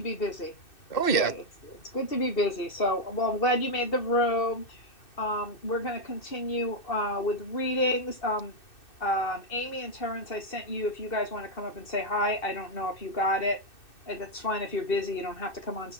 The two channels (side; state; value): right; late; 2.6 ms